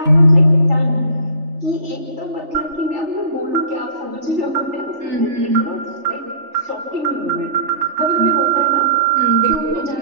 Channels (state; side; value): late; left; 3.4 ms